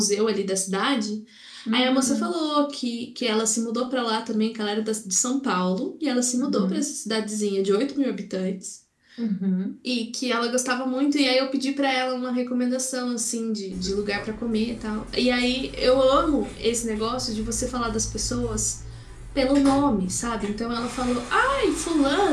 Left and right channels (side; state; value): both; identical; correlation 1.00